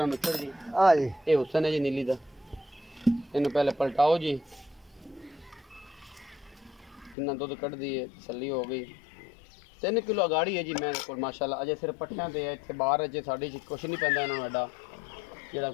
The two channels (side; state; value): right; drops out; at 7.2 s